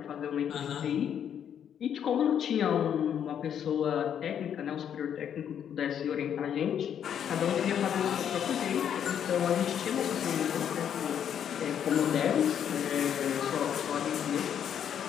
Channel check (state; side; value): quieter; right; 8.9 dB